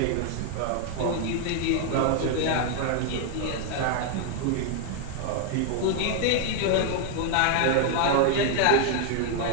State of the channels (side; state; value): both; different; correlation 0.00